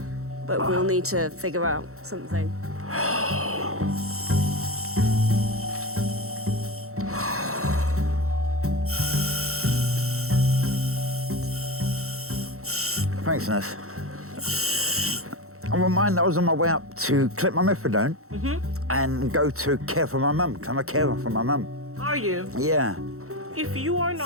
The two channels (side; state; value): left; late; 0.64 ms